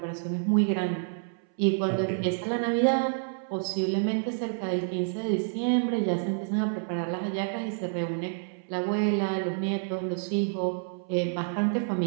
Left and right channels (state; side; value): silent; left; 59 dB below the other